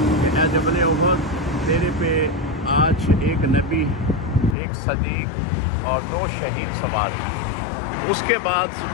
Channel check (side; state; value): right; drops out; at 4.5 s